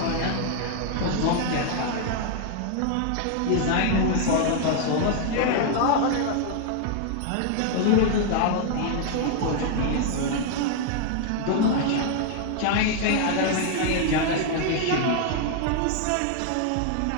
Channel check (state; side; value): different; both; correlation 0.00